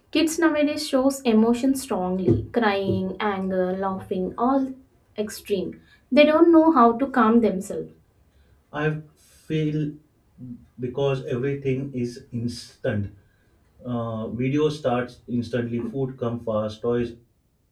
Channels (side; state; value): both; identical; correlation 1.00